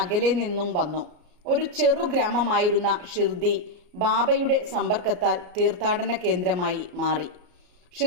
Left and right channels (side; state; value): left; late; 33 ms